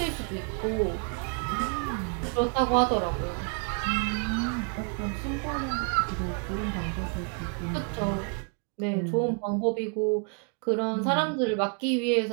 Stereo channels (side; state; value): left; quieter; 37.8 dB